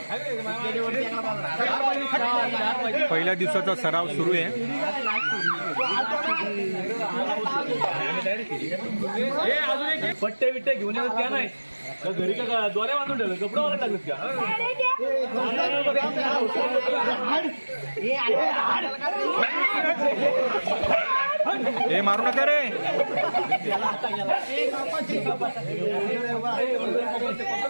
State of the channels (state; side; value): inverted; both; correlation -1.00